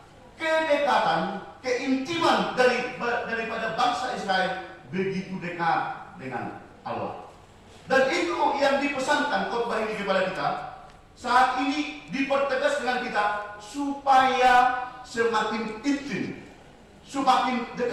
kedekatan, keintiman daripada bangsa Israel begitu dekat dengan Allah. Dan itu yang dipesankan khotbah ini kepada kita. Saat ini dipertegas dengan kita supaya semakin intim, semakin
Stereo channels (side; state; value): both; identical; correlation 1.00